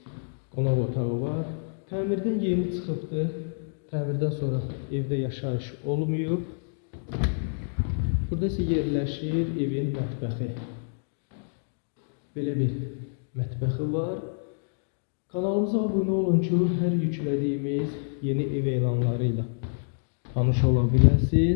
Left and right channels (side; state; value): right; silent; digital silence